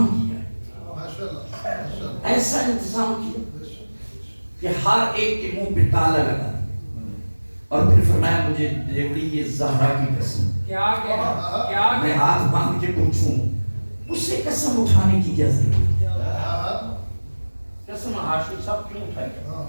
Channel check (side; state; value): both; inverted; correlation -1.00